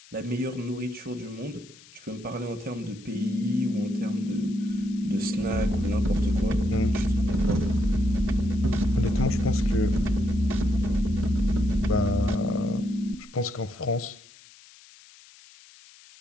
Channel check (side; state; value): left; noise; hiss, 23 dB below the sound